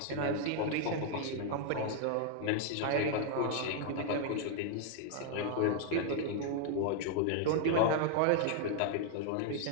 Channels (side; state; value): both; different; correlation 0.00